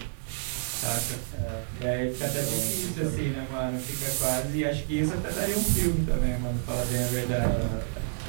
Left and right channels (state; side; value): silent; left; digital silence